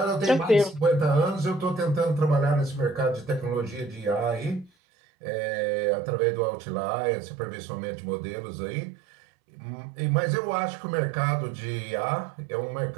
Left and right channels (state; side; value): drops out; left; at 4.7 s